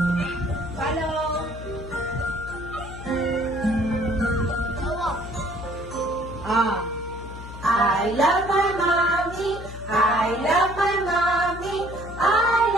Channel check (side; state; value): left; noise; hum, 12 dB below the sound